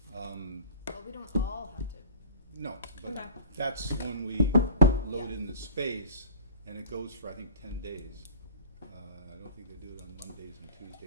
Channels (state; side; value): inverted; both; correlation -0.47